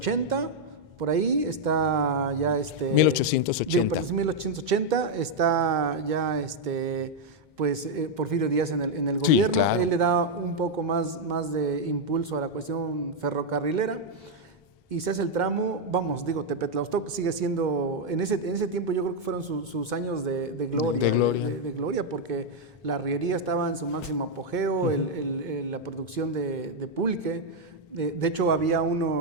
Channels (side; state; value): both; normal; correlation 0.00